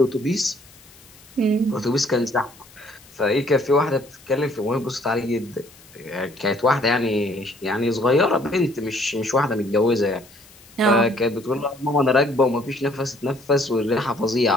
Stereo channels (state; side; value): noise; left; hiss, 24 dB below the sound